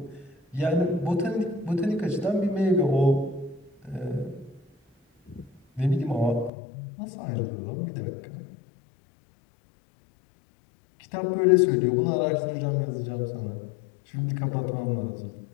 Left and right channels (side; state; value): right; drops out; at 6.5 s